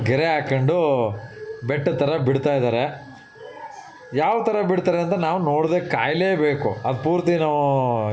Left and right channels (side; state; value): both; identical; correlation 1.00